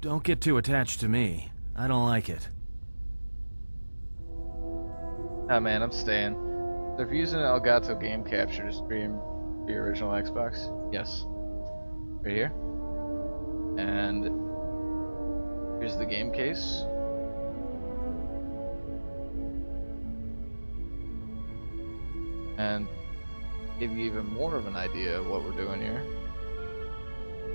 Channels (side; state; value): both; inverted; correlation -1.00